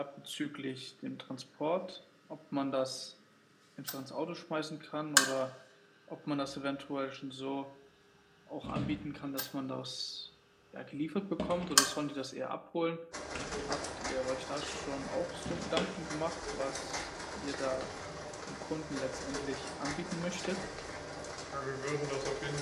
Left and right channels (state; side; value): identical; both; correlation 1.00